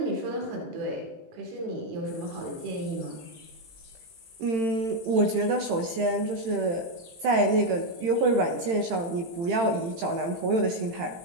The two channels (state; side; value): late; left; 18 ms